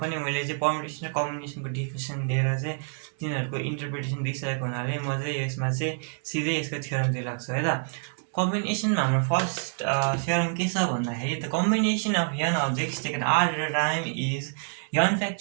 पनि मैले चाहिँ पर्मुटेसन र कम्बिनेसनको डिफिनेसन दिएर चाहिँ तिनीहरूको इन्टरप्रिटेसन दिइसकेको हुनाले म चाहिँ यसमा चाहिँ सिधै यसको थ्योरमतिर लाग्छु है त। कम्बिनेसनमा हाम्रो फर्स्ट थ्योरम के छ भन्दाखेरि the combination of n objects taken r at a time is n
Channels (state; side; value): silent; left; 60 dB below the other